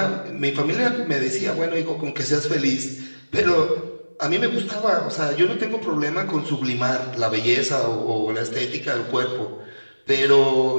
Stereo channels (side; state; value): both; inverted; correlation -1.00